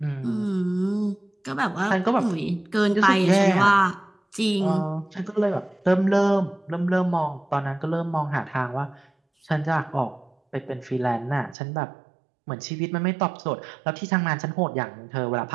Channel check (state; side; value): drops out; left; at 11.6 s